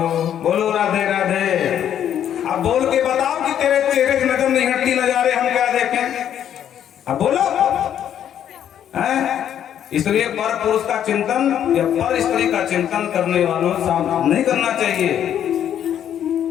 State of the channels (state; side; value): quieter; right; 9.9 dB